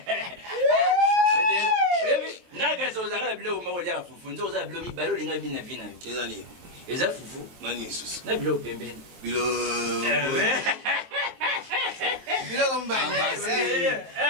naka so zaka bilo ma olia fufu nzo za bilo mi balo linga bina vina ezali eza fufu nani sus na bilo pembeni bilo bilo kombani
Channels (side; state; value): left; late; 23 ms